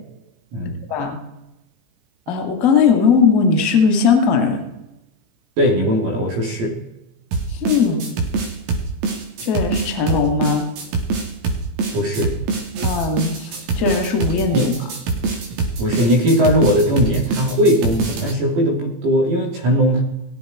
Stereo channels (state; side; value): late; left; 17 ms